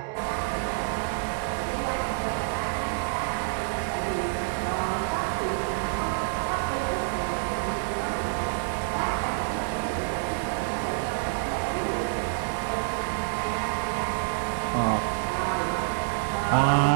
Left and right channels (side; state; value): left; silent; digital silence